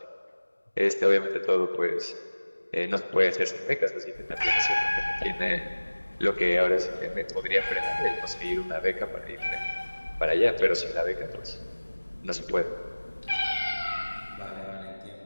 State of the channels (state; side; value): inverted; both; correlation -1.00